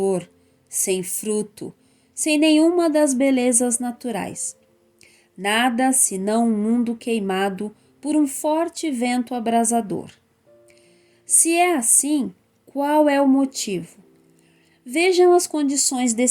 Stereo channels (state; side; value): identical; both; correlation 1.00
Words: sem fruto, sem nenhuma das belezas naturais. Nada senão um mundo queimado por um forte vento abrasador. Se é assim, qual é o motivo? Vejam as condições